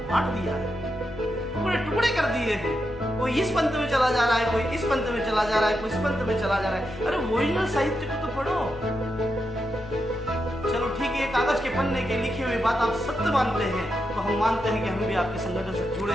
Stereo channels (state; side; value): noise; left; hum, 19 dB below the sound